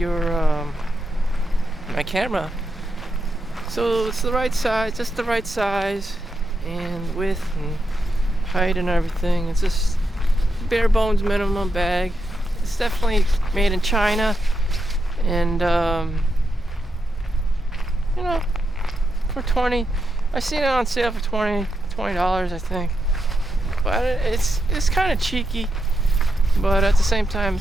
my camera. So it's the right size, just the right size and width and height and everything. It's just bare bones minimum bag. It's definitely made in China, and you know, for 20, I seen it on sale for $20, I think. But it's kind of cheeky, but at the same time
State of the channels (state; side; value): normal; both; correlation 0.85